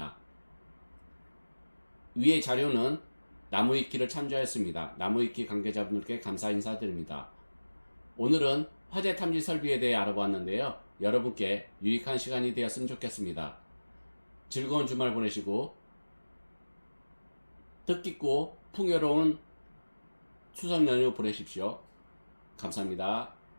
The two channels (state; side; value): inverted; both; correlation -1.00